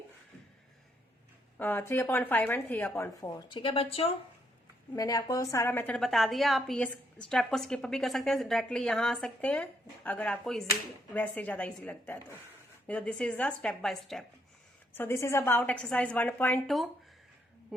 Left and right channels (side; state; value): both; normal; correlation 0.74